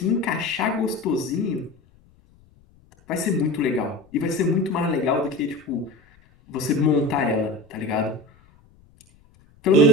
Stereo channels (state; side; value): noise; left; rumble, 30 dB below the sound